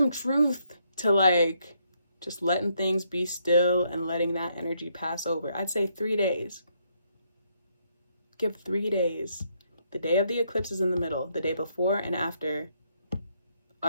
truth to like just letting things be still and letting that energy pass over. I'd say 3 days. Give 3 days. The day of the eclipse is in the middle. The day before and after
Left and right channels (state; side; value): inverted; both; correlation -0.75